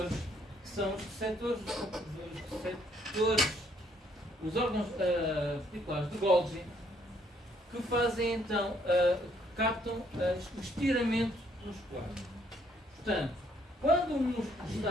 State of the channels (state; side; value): normal; both; correlation 0.67